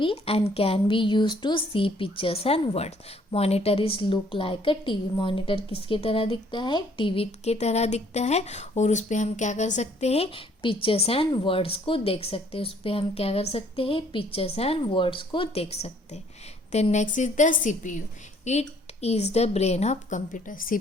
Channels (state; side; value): normal; both; correlation 0.62